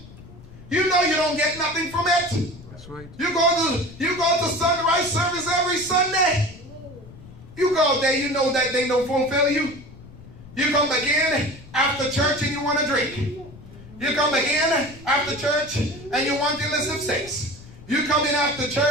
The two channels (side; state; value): left; noise; rumble, 18 dB below the sound